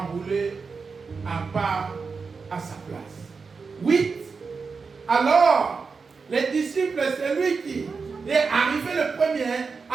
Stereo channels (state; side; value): quieter; left; 4.9 dB